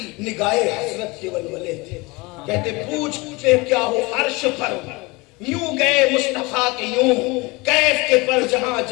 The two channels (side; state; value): right; quieter; 24.6 dB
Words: نگاہ حسرت کے ولولے تھے، کہتے پوچھتے کیا ہو عرش پر، یوں گئے مصطفیٰ کے یوں، کیف کے پر جہاں